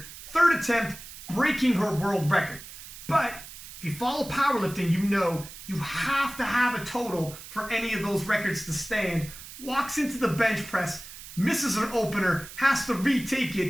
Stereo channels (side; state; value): right; noise; hiss, 14 dB below the sound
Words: third attempt, breaking her world record. But if you follow powerlifting, you know you have to have a total for any of those records to stand. Walks into the bench press, misses an opener, has to retake